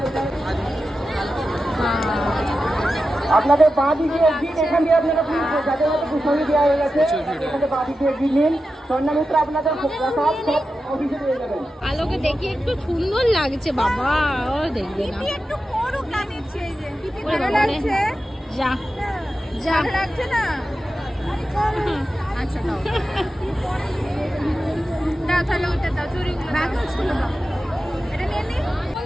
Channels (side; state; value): both; normal; correlation 0.92